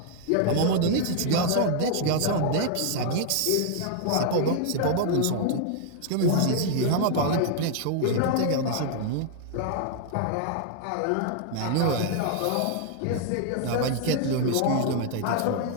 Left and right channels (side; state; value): both; different; correlation 0.00